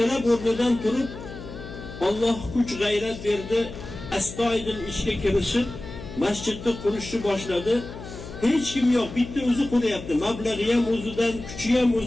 o'rnidan turib, Alloh kuch g'ayrat berdi, astoydil ishga kirishib, masjidni qurishni boshladi. Hech kim yo'q, bitta o'zi qurayapti. Mablag'i ham o'zidan, kuchi ham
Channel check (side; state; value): left; noise; hum, 12 dB below the sound